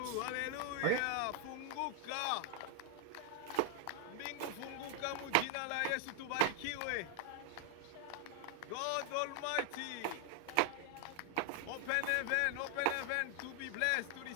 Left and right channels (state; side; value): different; both; correlation 0.00